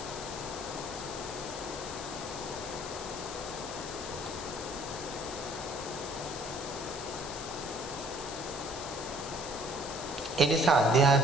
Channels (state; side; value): noise; left; hiss, 9 dB below the sound